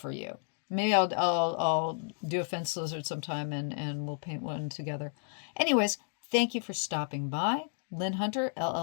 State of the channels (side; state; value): right; silent; digital silence